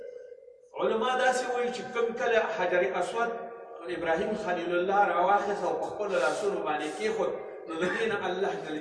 علما داسې وایي چې کوم کله حجر اسود ابراهیم خلیل الله راواخیست او په خپلو لاسونو باندې کېښود نو د دې نه الله جل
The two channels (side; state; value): both; identical; correlation 1.00